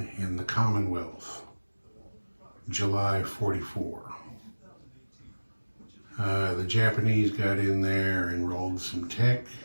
and the Commonwealth, July 44. The Japanese got in there and rolled some tech,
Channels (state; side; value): inverted; both; correlation -1.00